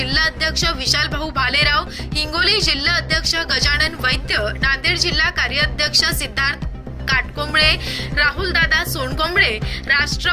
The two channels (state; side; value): identical; both; correlation 1.00